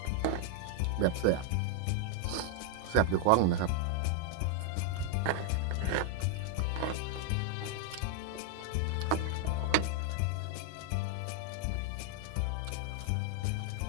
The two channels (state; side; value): different; both; correlation 0.00